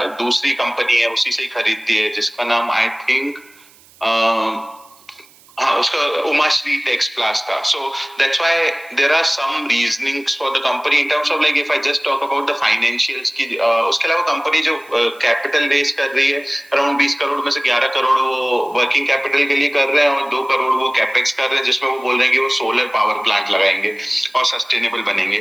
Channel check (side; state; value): right; noise; hiss, 27 dB below the sound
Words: दूसरी company है उसी से ही खरीदती है, जिसका नाम I think उसका उमाश्री टेक्स प्लास था। So that's why there are some reasonings for the company in terms of like if I just talk about the financials की, उसके अलावा कंपनी जो कैपिटल रेज कर रही है अराउंड 20 करोड़ में से 11 करोड़ वो वर्किंग कैपिटल के लिए कर रहे हैं और 2 करोड़ वो कैपेक्स कर रहे हैं, जिसमें वो बोल रहे हैं कि वो सोलर पावर प्लांट लगाएंगे और सस्टेनेबल बनेंगे।